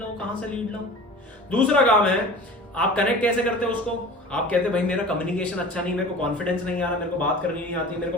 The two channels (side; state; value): both; normal; correlation 0.40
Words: लाऊं, कहां से लीड लाऊं। दूसरा काम है आप कनेक्ट कैसे करते हो उसको, आप कहते हैं भाई मेरा कम्युनिकेशन अच्छा नहीं, मेरे को कॉन्फिडेंस नहीं आ रहा, मेरे को बात करनी नहीं आती, मेरे को